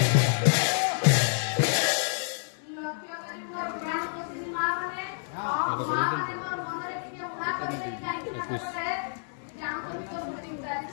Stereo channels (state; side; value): silent; right; 59 dB below the other